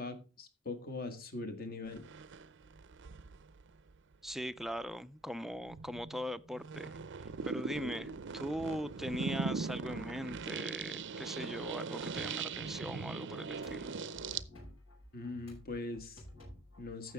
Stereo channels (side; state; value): both; normal; correlation 0.56